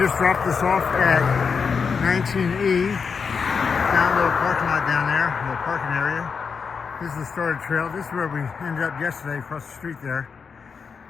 dropped us off at 19E, down a little parking lot down there, a little parking area. This is the started trail. This is where we ended up yesterday, across the street there.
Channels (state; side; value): quieter; right; 5.7 dB